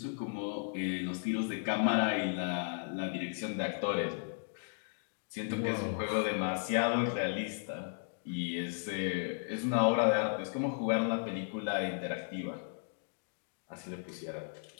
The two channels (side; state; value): right; silent; digital silence